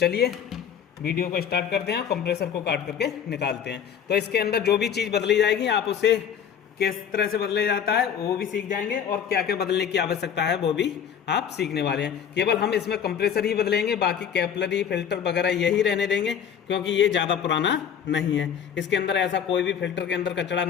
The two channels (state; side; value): quieter; right; 8.2 dB